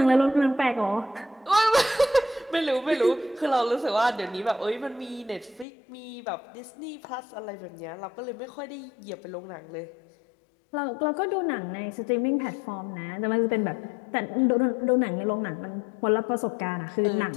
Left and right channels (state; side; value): drops out; right; at 5.7 s